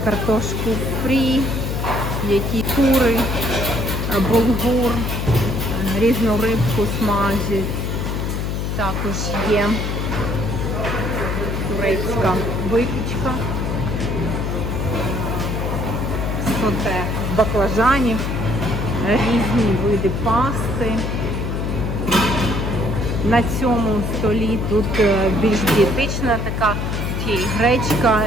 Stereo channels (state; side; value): noise; left; hum, 1 dB below the sound